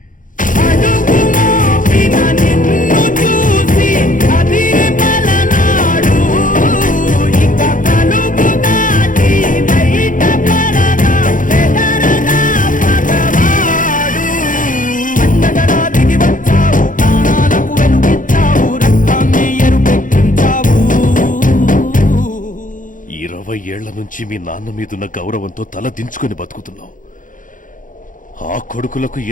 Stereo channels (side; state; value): right; late; 0.38 ms